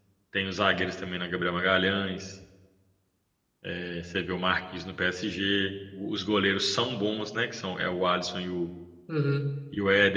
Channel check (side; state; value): both; identical; correlation 1.00